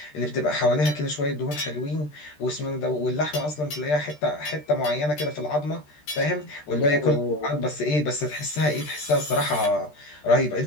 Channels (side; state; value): right; late; 13 ms